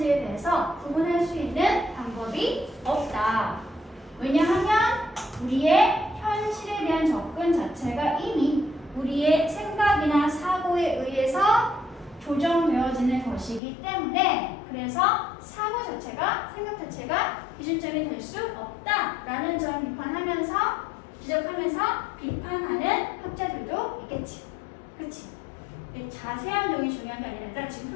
대해서 구분할 수 있는 방법이 없다. 왜냐하면 우리의 현실에 대한 접근 자체가 이미 우리의 생각이나 사고에 의해서 조정되어지는 것이기 때문에 그래서 사고 자체가 요즘이 될 수 없다라는 점 비판하면서 지적하면서 비판하는 학자들도 있겠지. 그치? 자세한 내용이 중요한 게 아니라 지금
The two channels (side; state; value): right; drops out; at 13.6 s